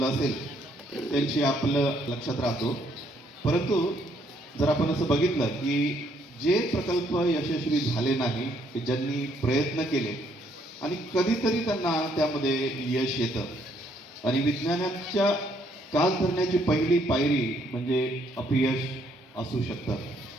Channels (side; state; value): both; normal; correlation 0.69